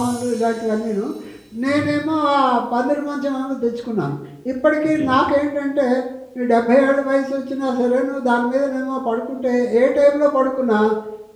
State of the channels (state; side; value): identical; both; correlation 1.00